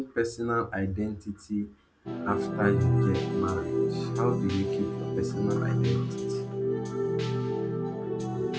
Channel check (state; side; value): identical; both; correlation 1.00